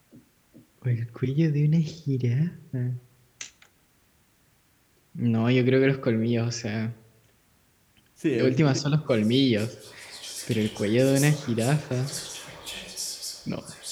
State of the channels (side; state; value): both; identical; correlation 1.00